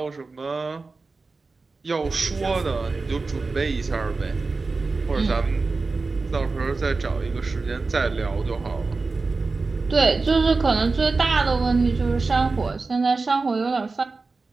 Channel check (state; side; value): quieter; left; 3.9 dB